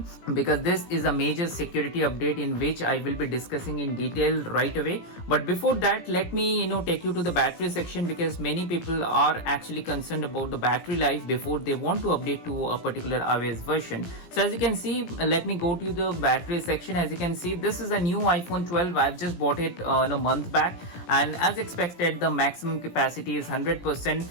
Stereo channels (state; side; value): late; right; 17 ms